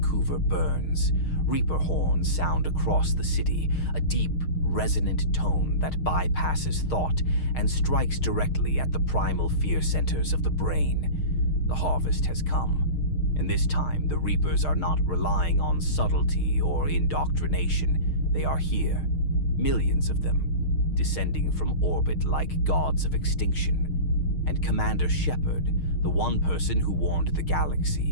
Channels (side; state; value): right; late; 6.5 ms